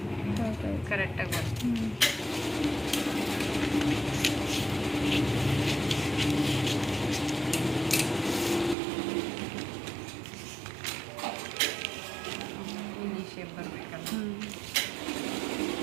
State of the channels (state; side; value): drops out; left; at 8.8 s